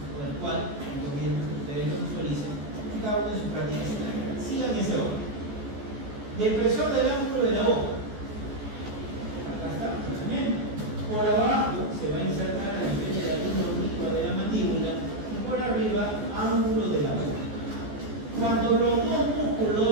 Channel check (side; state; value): left; late; 14 ms